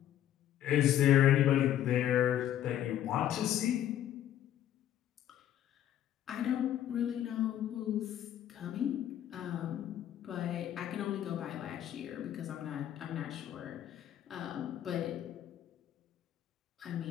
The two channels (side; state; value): right; quieter; 11.4 dB